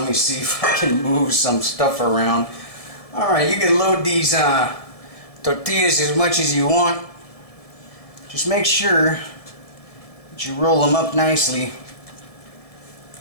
me see if I can move some stuff around. Alright, you can load these tortillas as much as you want. Just make sure that you roll them up nicely.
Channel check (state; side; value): late; right; 1.7 ms